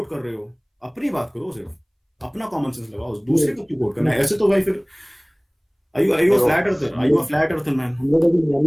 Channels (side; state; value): both; identical; correlation 1.00